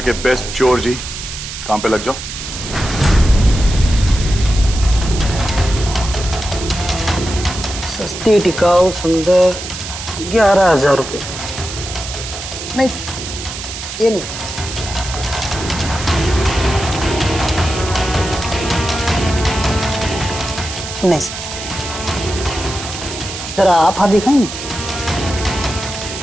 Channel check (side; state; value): right; noise; hiss, 9 dB below the sound